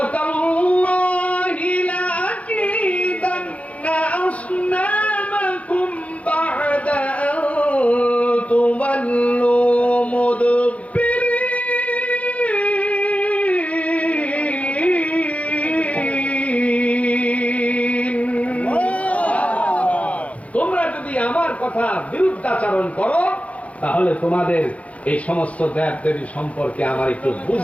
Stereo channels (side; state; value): right; late; 0.065 ms